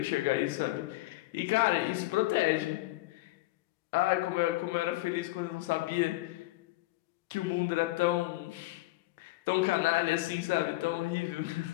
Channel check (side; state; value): right; quieter; 19.5 dB